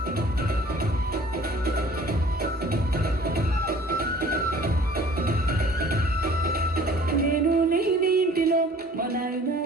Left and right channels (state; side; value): normal; both; correlation 0.51